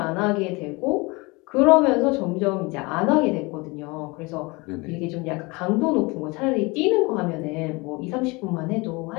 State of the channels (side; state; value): right; quieter; 25.7 dB